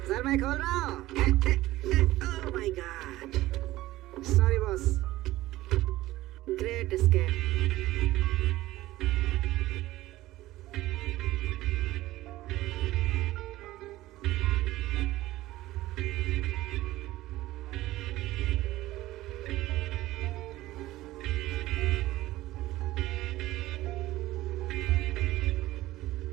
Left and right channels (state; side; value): quieter; left; 16.6 dB